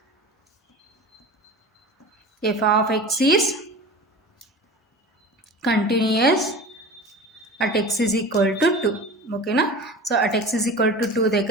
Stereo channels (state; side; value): normal; both; correlation 0.35